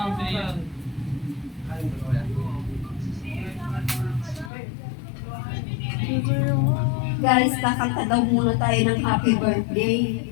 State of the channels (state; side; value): drops out; right; at 4.5 s